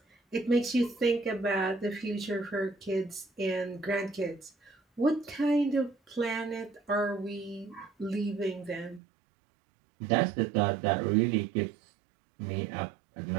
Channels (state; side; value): drops out; left; at 9.0 s